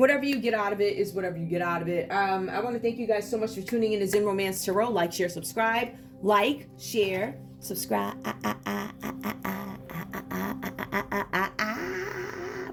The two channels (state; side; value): identical; both; correlation 1.00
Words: you get out of it is whatever you get out of it. I want to thank you guys so much for tuning in to Zen Romance Tarot. Like, share, subscribe. Like, share, subscribe.